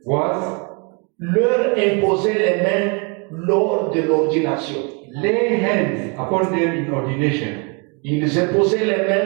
was leur imposer les mains lors de l'ordination. Lay hands upon them in ordination. Ils imposaient les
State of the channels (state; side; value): quieter; left; 32.6 dB